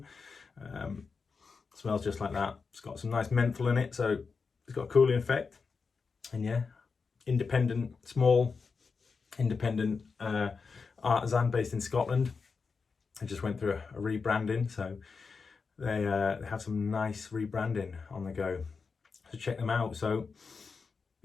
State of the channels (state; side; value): quieter; right; 5.0 dB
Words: Smells just like that. It's got some nice menthol in it, so it's got a cooling effect. And yeah, small independent Artisan based in Scotland. I just went through a rebranding, so they have some nice rebranding on the go. So check them out. So